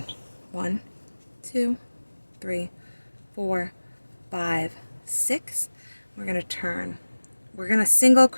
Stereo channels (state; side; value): inverted; both; correlation -1.00